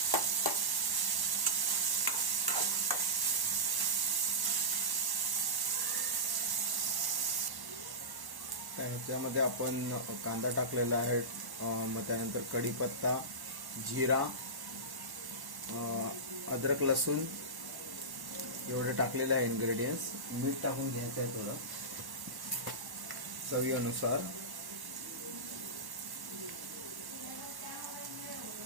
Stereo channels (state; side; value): late; left; 1.1 ms